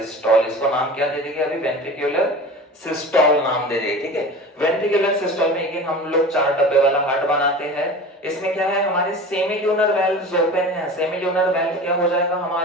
इसको नाम क्या दे देंगे? अभी वेंट्रिक्यूलर सिस्टोल नाम दे देंगे, ठीक है। वेंट्रिक्यूलर सिस्टोल में अगेन हम लोग 4 डब्बे वाला हार्ट बनाते हैं। इसमें क्या है? हमारे सेमिल्यूनर वेल्व्स ओपन है। सेमिल्यूनर वेल्व क्या हो जाएगा?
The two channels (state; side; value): normal; both; correlation 0.35